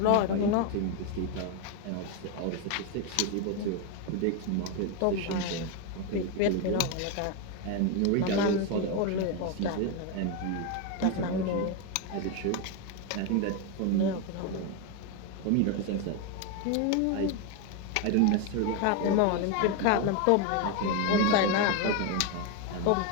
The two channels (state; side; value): different; both; correlation 0.02